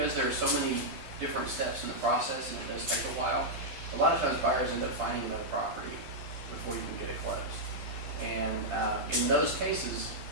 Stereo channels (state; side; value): late; left; 11 ms